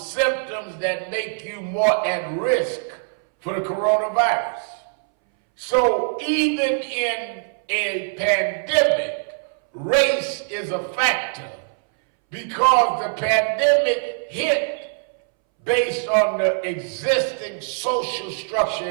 that make you more at risk for the coronavirus. So even in a pandemic, race is a factor because the pandemic hit based on the existing social structure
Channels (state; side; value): silent; left; 63 dB below the other